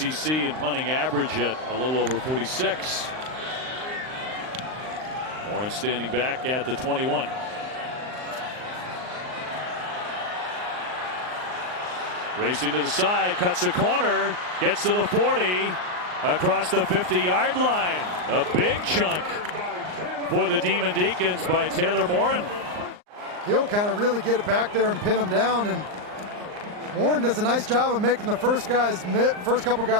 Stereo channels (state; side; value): late; left; 39 ms